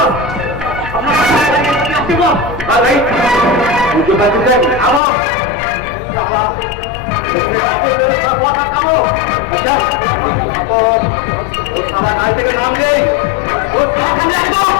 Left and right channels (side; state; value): right; drops out; at 5.0 s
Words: থেকে নাম নেই